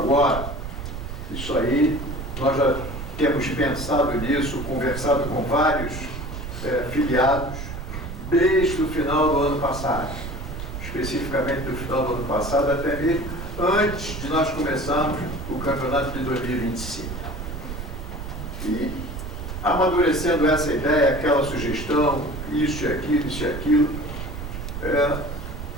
Isso aí, nós já temos pensado nisso, conversado com vários filiados, desde o final do ano passado. Especificamente do final do ano passado, até mesmo antes de nós começarmos o campeonato de 2025. E, amadurecendo essa ideia, aquela sugestão, isso e aquilo,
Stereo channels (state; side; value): noise; right; rumble, 7 dB below the sound